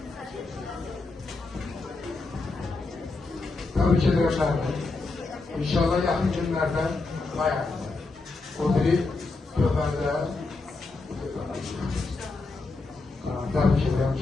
Tabii ki Nərdi. İnşallah yaxın günlərdə bayağı. O biri Köfərdə. Tabii ki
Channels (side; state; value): right; quieter; 3.6 dB